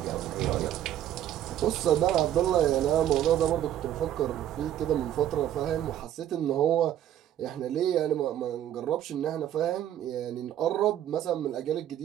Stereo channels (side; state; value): left; quieter; 11.5 dB